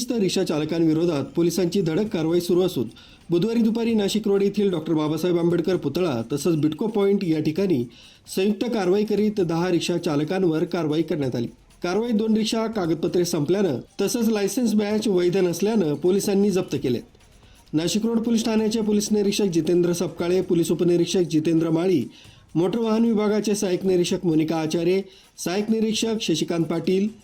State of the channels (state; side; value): identical; both; correlation 1.00